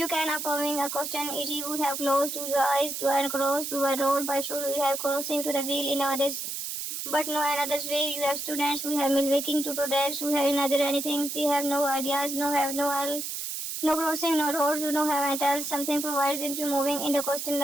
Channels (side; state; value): right; noise; hiss, 5 dB below the sound